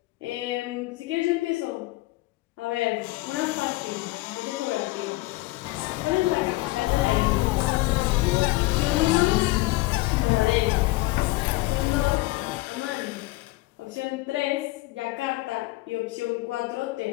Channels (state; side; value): quieter; right; 20.4 dB